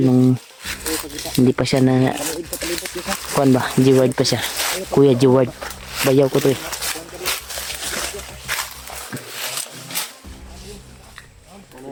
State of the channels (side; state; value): both; identical; correlation 1.00